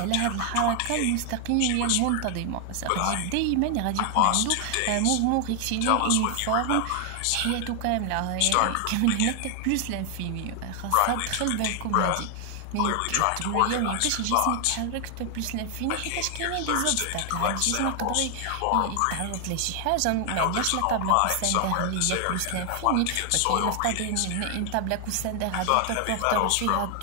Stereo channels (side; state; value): both; different; correlation 0.00